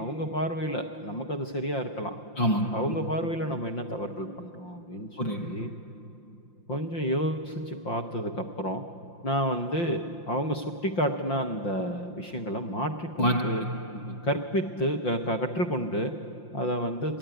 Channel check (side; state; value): right; late; 5.8 ms